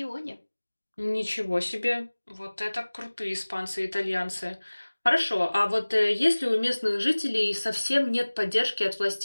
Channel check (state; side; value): inverted; both; correlation -1.00